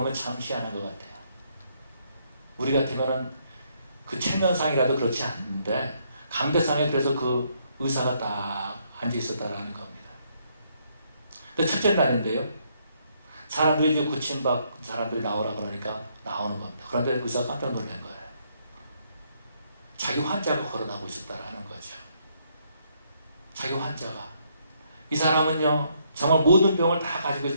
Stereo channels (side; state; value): both; inverted; correlation -0.72